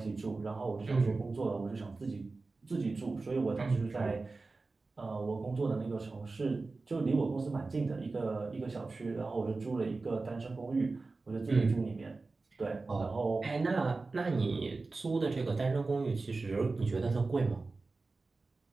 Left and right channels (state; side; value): quieter; left; 3.7 dB